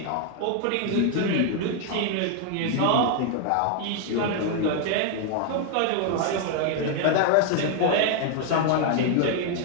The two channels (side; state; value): both; different; correlation 0.00